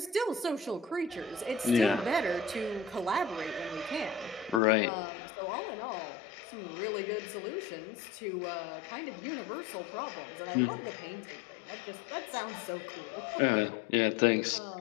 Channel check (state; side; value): drops out; right; at 4.6 s